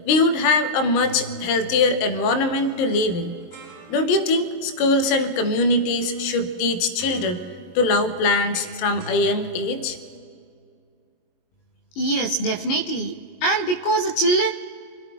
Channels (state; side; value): late; right; 22 ms